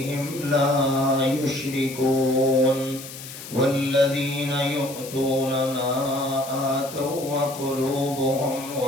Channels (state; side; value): noise; left; hiss, 13 dB below the sound